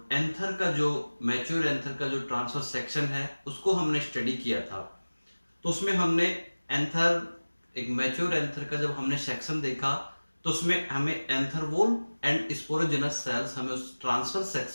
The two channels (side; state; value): both; inverted; correlation -1.00